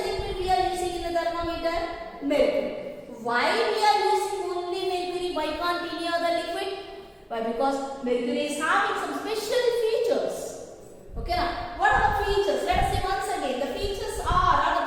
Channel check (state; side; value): identical; both; correlation 1.00